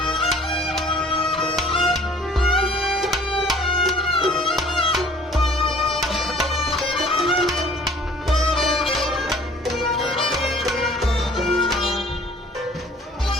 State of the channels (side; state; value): both; normal; correlation 0.53